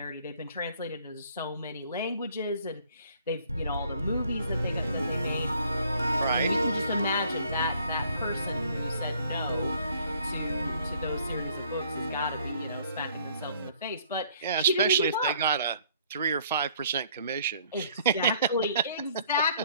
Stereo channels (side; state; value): both; inverted; correlation -0.60